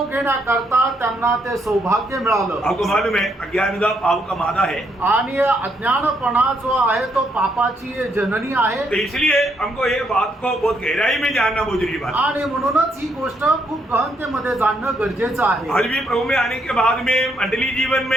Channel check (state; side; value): normal; both; correlation 0.75